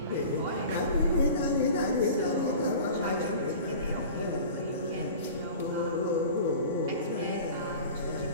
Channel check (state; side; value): inverted; both; correlation -0.39